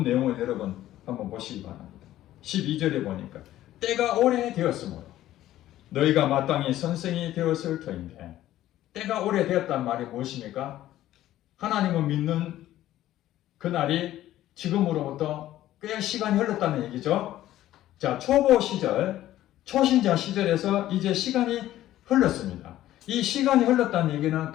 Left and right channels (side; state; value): right; quieter; 13.8 dB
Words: 내용을 여러분 한번 보시기 바랍니다. 12절에 보니까 때가 오래되었으므로 너희가 마땅히 선생이 되었을 터인데, 때가 오래되었단 말이 무엇입니까? 하나님을 믿는 그날이 지금으로부터 꽤 시간이 흘렀다는 얘기죠. 자, 초보 시절, 초신자 시절에서 이제 시간이 흘렀습니다. 이 시간이 흘렀다는 얘기는